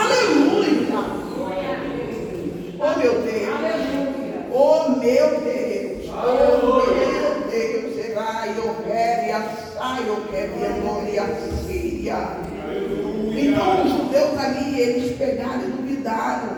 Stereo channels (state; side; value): identical; both; correlation 1.00